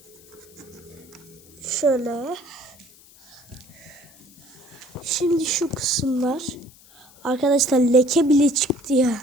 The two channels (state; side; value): noise; left; hiss, 25 dB below the sound